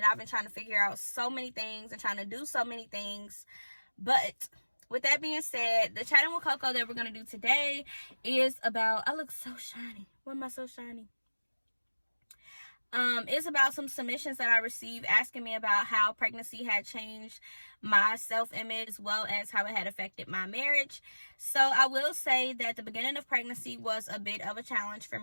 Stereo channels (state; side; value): inverted; both; correlation -1.00